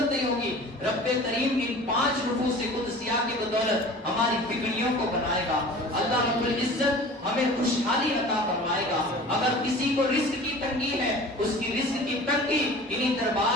نہیں ہوگی. رب کریم ان 5 نفوس قدسیہ کی بدولت ہماری بگڑیوں کو بنائے گا. اللہ رب العزت ہمیں خوشحالی عطا فرمائے گا. اگر کسی کو رزق کی تنگی ہے اس کی رزق کی تنگی انہی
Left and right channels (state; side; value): normal; both; correlation 0.41